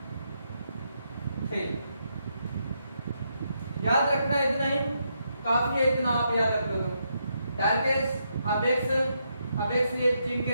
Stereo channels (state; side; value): inverted; both; correlation -0.80